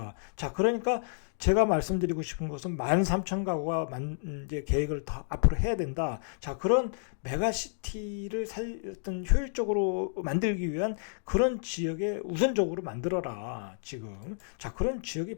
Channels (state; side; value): silent; right; digital silence